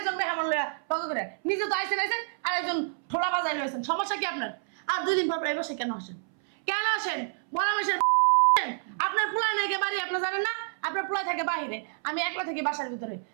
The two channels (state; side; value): silent; left; 59 dB below the other